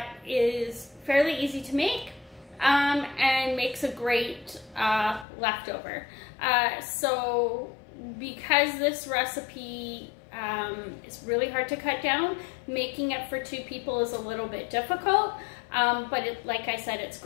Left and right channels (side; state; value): right; drops out; at 5.2 s